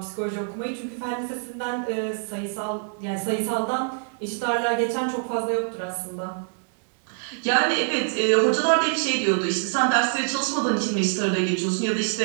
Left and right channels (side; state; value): left; silent; 62 dB below the other